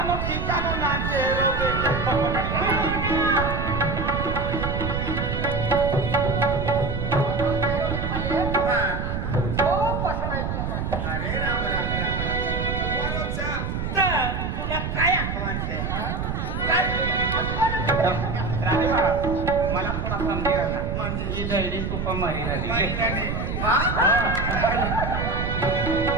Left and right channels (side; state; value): right; noise; rumble, 2 dB below the sound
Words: ठिकानो नाचे रोगे अरे राम राम तुला काय आठवणते राणे मला थोडा समजेल ना म्हणजे ही दैडी तुपा मारी राहिली